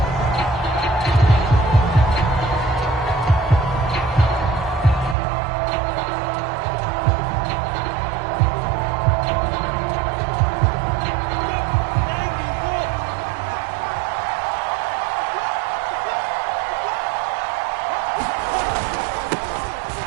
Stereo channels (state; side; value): drops out; left; at 5.2 s